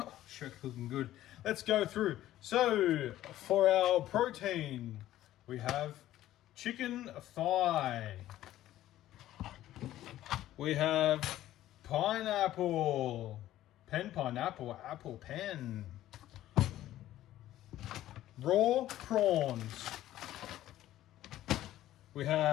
sure, looking good. Let's go through. So, for our protein, we have chicken thigh. We have pineapple. Pineapple, apple pen. Raw prawns. We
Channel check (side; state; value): right; quieter; 13.8 dB